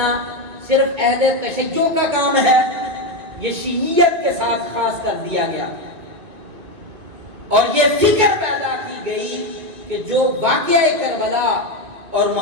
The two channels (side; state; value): left; late; 2.4 ms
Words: صرف اہل تشیع کا کام ہے؟ یہ شیعیت کے ساتھ خاص کر دیا گیا، اور یہ فکر پیدا کی گئی کہ جو واقعہ کربلا اور